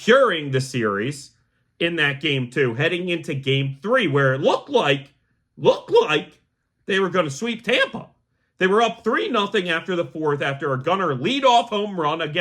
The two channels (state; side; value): identical; both; correlation 1.00